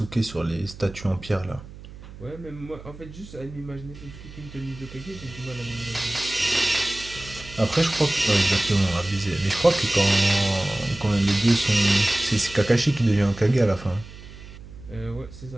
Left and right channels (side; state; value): right; noise; hum, 16 dB below the sound